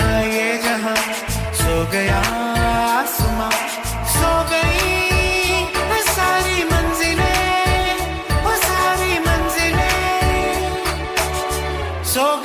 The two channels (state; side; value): identical; both; correlation 1.00